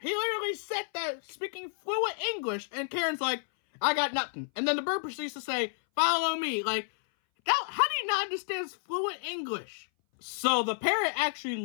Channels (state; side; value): silent; right; 58 dB below the other